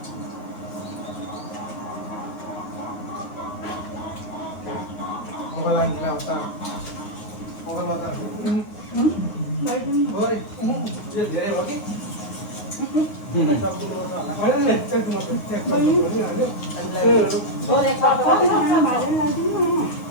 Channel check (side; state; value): right; late; 9.5 ms